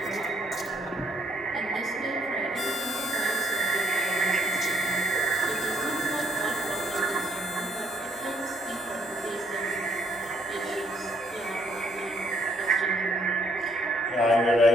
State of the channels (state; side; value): normal; both; correlation 0.66